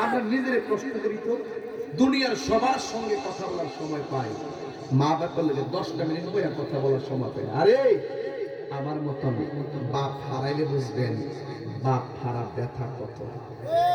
আমরা নিজের প্রশ্ন করি তো, দুনিয়ার সবার সঙ্গে কথা বলার সময় পাই, মা বাবার লগে 10টা মিনিট বইয়া কথা বলার সময় পাই। আরে আমার মতন বাপ হারাইলে বুঝবেন বাপ হারা ব্যথা কত।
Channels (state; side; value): identical; both; correlation 1.00